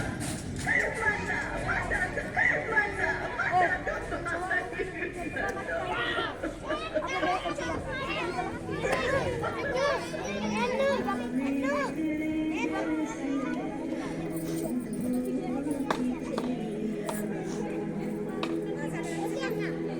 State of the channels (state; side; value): identical; both; correlation 1.00